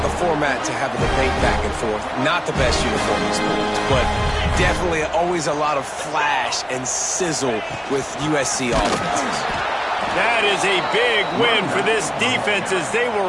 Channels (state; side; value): identical; both; correlation 1.00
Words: format to have a debate back and forth. Not the best uniform in sports, but definitely always a lot of flash and sizzle with USC offenses. That is a big win for this defense as they